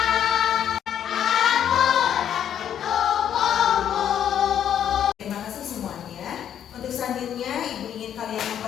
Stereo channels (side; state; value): right; quieter; 9.6 dB